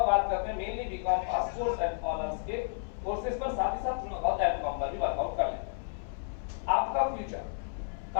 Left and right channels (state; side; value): silent; right; 56 dB below the other